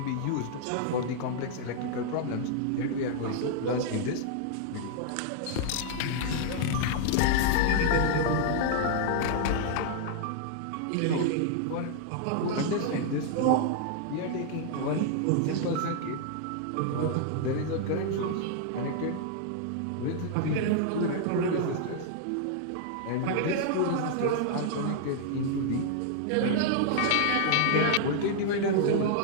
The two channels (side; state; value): both; different; correlation 0.00